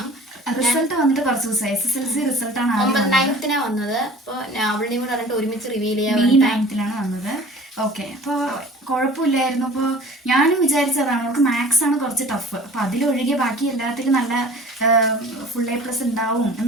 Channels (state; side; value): normal; both; correlation 0.45